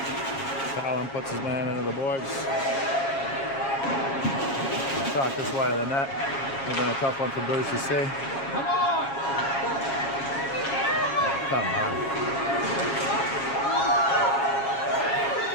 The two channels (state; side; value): late; right; 7.3 ms